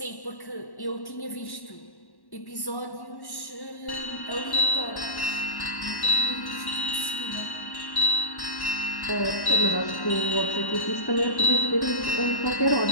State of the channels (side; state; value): right; late; 1.1 ms